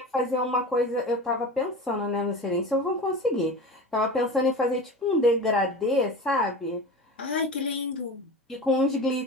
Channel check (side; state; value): both; normal; correlation 0.31